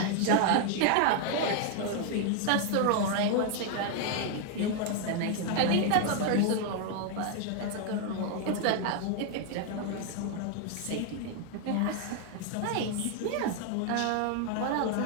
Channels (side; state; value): both; different; correlation 0.01